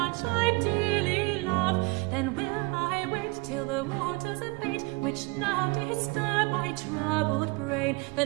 I dearly love. Then will I wait till the waters abate, which now disturb my troubled brain.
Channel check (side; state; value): left; quieter; 27.1 dB